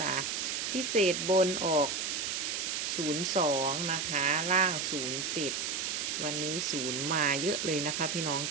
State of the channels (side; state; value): right; noise; hiss, 1 dB below the sound